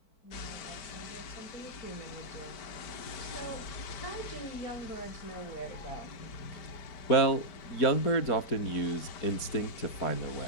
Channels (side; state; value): right; late; 4.5 ms